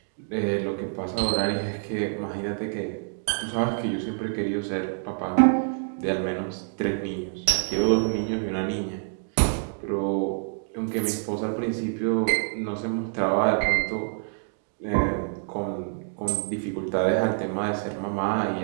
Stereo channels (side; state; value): left; silent; 60 dB below the other